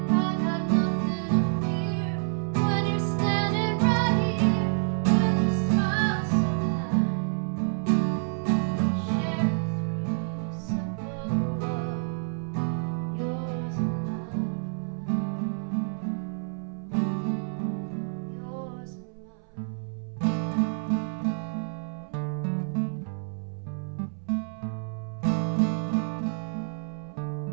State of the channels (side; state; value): left; silent; 59 dB below the other